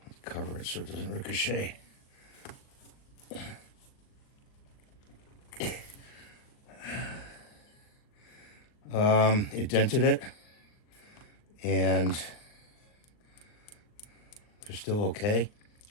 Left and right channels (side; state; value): right; late; 39 ms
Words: cover it so it doesn't ricochet. It dented it, and they're still okay.